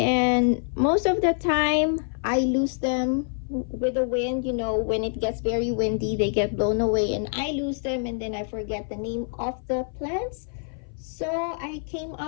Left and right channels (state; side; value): silent; right; 57 dB below the other